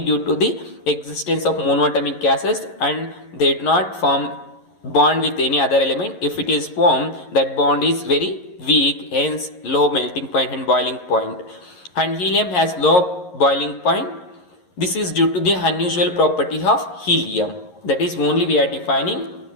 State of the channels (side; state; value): right; late; 11 ms